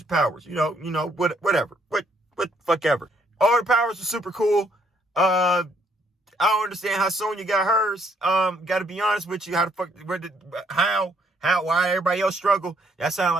powers. You know, whatever. What fuck ever. All the powers are super cool. I don't understand how Sonya got hers. Gotta be honest with you. Why everybody else struggle? That sound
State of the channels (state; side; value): normal; both; correlation 0.68